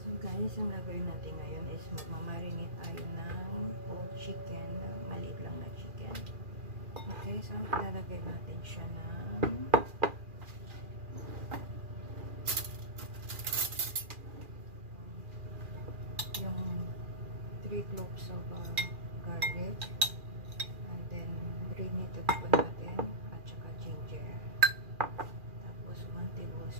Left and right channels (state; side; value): late; left; 2.4 ms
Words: Guys, ang gagawin natin ngayon is magmamarinate tayo ng whole chicken, maliit lang na chicken. Okay, so ilalagay natin siya ng yung 3 cloves of garlic, and then granulated po natin at saka ginger, tapos 1